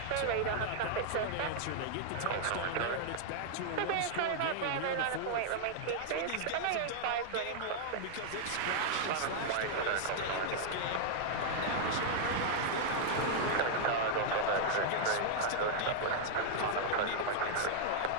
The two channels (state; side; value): different; both; correlation -0.01